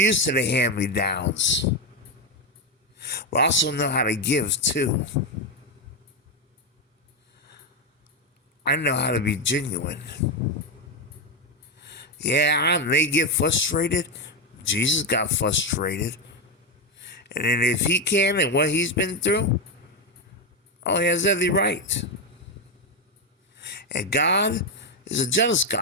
to the hand-me-downs. But I also know how to give too. I know how to be genuine. Yeah, I may get frustrated. Jesus got frustrated. And then if he can and what he's been through, oh, he has every right. And God is a jealous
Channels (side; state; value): both; normal; correlation 0.08